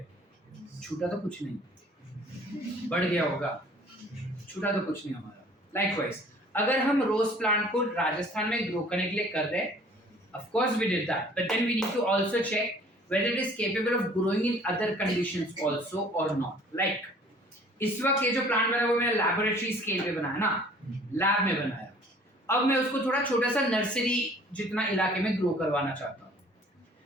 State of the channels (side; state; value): both; normal; correlation 0.53